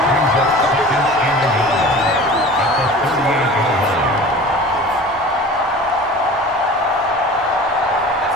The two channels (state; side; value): normal; both; correlation 0.40